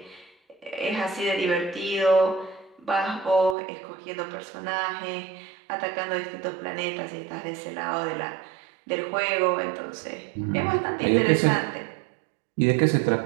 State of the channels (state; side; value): drops out; left; at 3.6 s